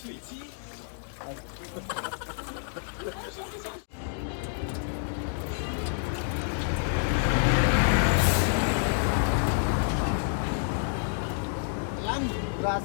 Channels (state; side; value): silent; right; digital silence